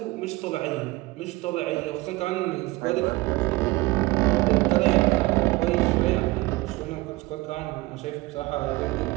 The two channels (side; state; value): left; quieter; 21.0 dB